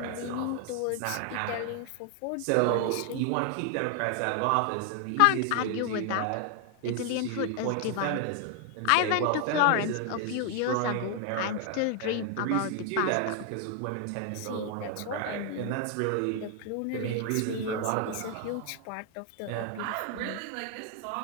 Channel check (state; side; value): different; both; correlation 0.00